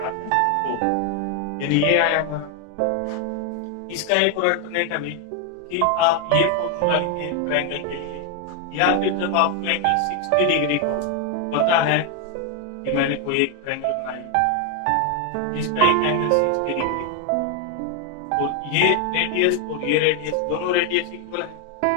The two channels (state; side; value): different; both; correlation 0.01